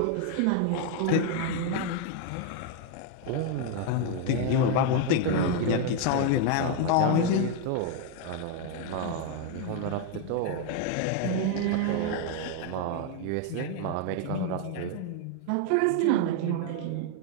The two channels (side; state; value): both; different; correlation 0.01